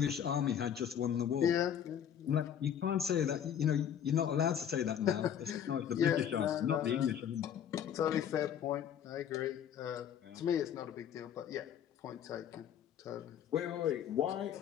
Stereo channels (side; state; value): right; quieter; 9.2 dB